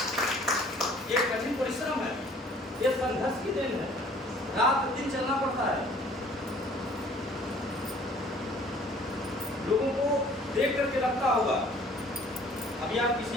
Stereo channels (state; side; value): normal; both; correlation 0.54